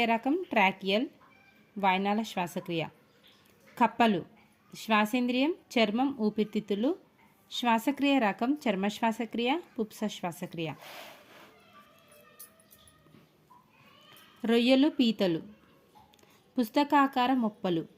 రకం ట్రాకియల్ వాయునాళ శ్వాసక్రియ. కప్పలు శ్వాసేంద్రియం చర్మం ఊపిరితిత్తులు, శ్వాసక్రియ రకం చర్మ శ్వాసక్రియ పుప్స శ్వాసక్రియ. రొయ్యలు పీతలు పుస్తకాకార మొప్పలు,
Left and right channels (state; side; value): identical; both; correlation 1.00